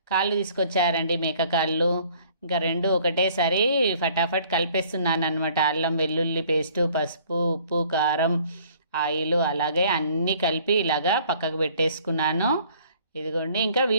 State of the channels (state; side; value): inverted; both; correlation -0.57